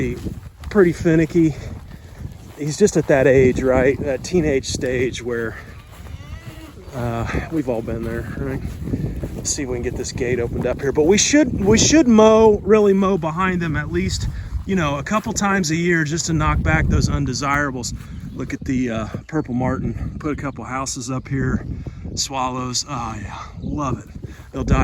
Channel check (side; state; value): both; identical; correlation 1.00